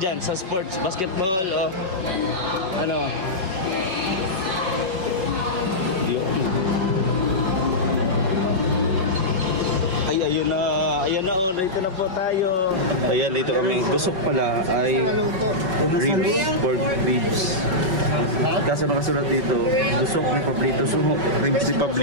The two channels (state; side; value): late; left; 5.3 ms